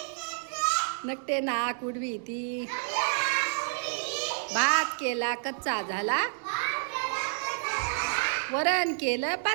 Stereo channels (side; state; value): left; silent; digital silence